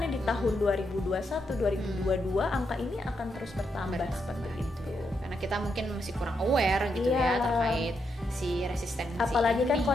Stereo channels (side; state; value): both; normal; correlation 0.81